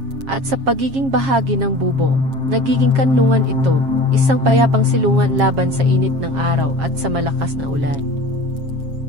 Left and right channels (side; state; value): left; late; 7.4 ms